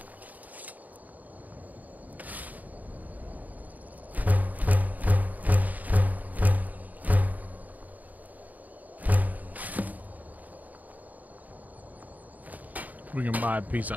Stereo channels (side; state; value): left; late; 0.079 ms